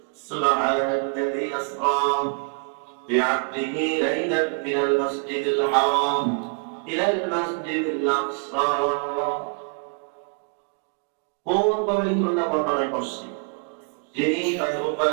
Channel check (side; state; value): left; quieter; 37.2 dB